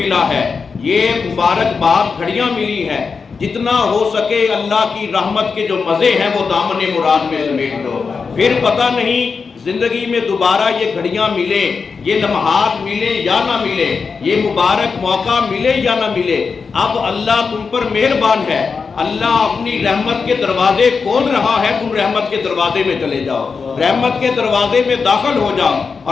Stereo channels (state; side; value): quieter; right; 5.2 dB